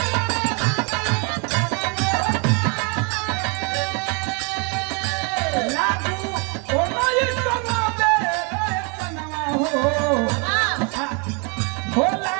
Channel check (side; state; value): left; quieter; 34.5 dB